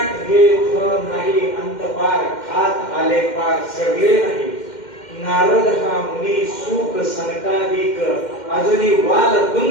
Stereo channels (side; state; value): right; late; 2.1 ms